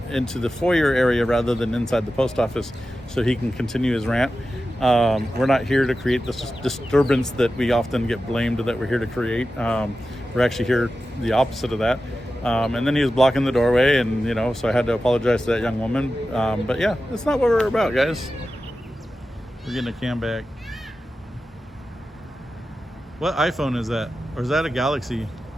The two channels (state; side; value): normal; both; correlation 0.93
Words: into the foyer area rather than inside the post office, so he can continue his rant. We're not here to create this disturbance that we often get blamed that we're here to create. We're actually here the opposite of that. And then he was blocking the doorway, and so I had to apologize to that young woman. But yeah, that's not what we're about, guys. We're getting a cam back. What iPhone is that? Or is that a Galaxy?